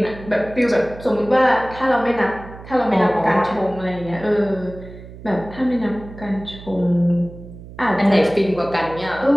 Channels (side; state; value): right; noise; hum, 16 dB below the sound